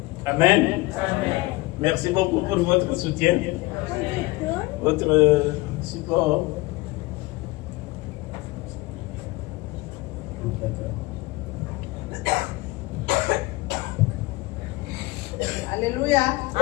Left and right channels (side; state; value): right; quieter; 21.7 dB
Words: Amen. Merci beaucoup pour votre soutien, votre support. Alléluia.